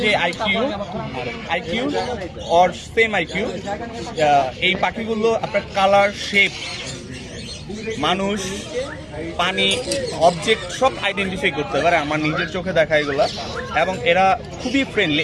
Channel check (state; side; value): identical; both; correlation 1.00